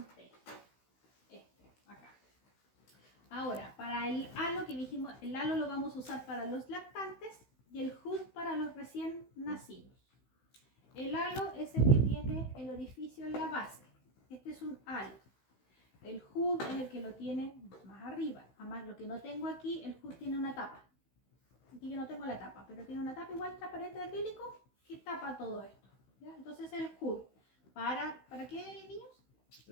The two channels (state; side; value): late; right; 16 ms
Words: acá. Ahora, para el halo que dijimos, el halo lo vamos a usar para los lactantes y el hood para los recién nacidos. El halo es el que tiene el orificio en la base. Este es un halo. El hood es el que lo tiene más arriba. Además, lo que no tengo aquí, el hood tiene una tapa. Aquí yo no tengo la tapa, pero tiene una tapa igual transparente de acrílico que tapa todo esto. ¿Ya? Entonces el hood. ¿Para qué, niños?